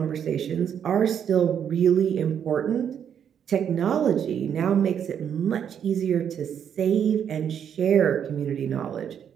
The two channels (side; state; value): left; quieter; 8.5 dB